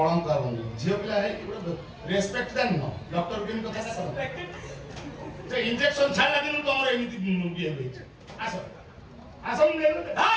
आबनी झियो पिला है रेस्पेक्ट देन न डॉक्टर केन कथा कर जे इंजेक्शन छाला दिन तमर एमिति बिहे होइछ आसो आसो ले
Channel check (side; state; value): both; identical; correlation 1.00